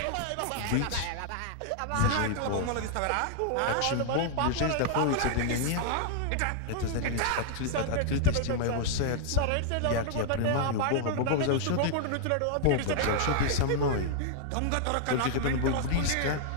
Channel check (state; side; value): different; both; correlation 0.00